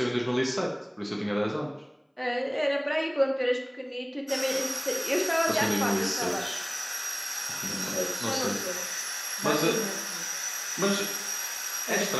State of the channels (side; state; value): both; identical; correlation 1.00